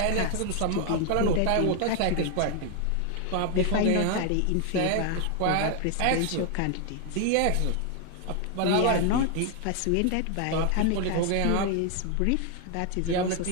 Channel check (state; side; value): different; both; correlation 0.00